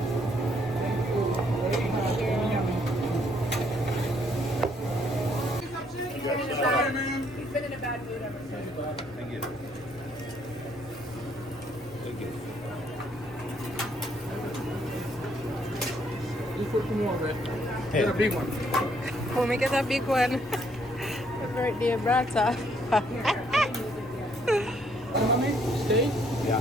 He's been in a bad mood ever since. Thank you. Thank you. Just put some more, man. Get a big one. Oh, make it a big one. The birthday brata. Steak? Yeah.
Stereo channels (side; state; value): both; normal; correlation 0.68